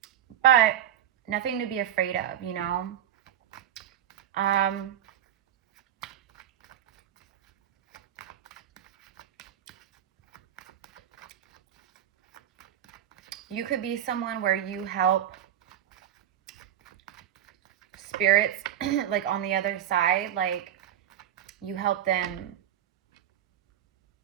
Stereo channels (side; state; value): left; quieter; 10.8 dB